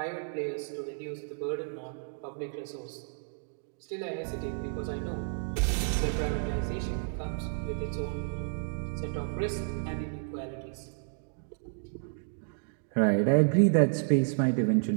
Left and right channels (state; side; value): silent; left; digital silence